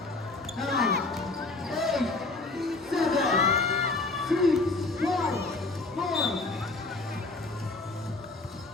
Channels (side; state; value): right; quieter; 3.4 dB